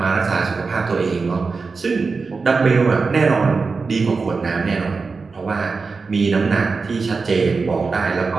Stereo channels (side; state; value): left; quieter; 4.5 dB